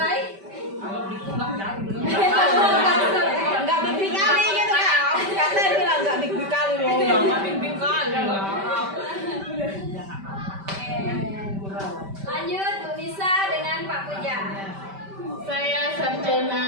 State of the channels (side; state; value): left; late; 5.1 ms